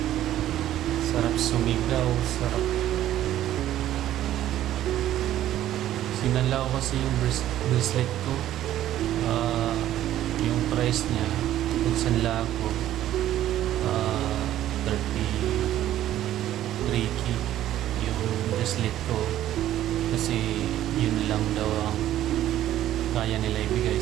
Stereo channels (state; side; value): quieter; left; 12.8 dB